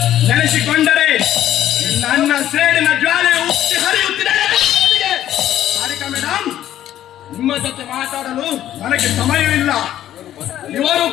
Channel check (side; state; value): right; quieter; 12.1 dB